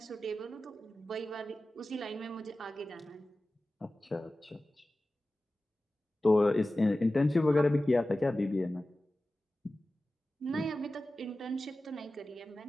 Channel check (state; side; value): normal; both; correlation 0.95